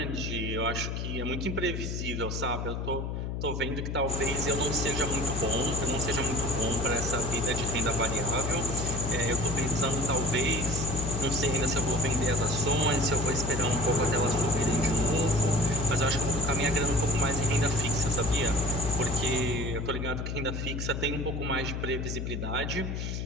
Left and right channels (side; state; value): left; noise; hum, 3 dB below the sound